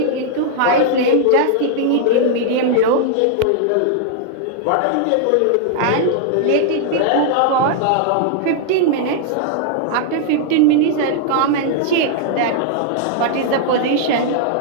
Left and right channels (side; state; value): both; different; correlation -0.01